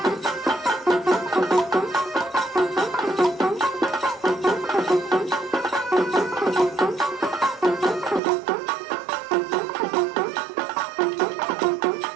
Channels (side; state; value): left; drops out; at 8.2 s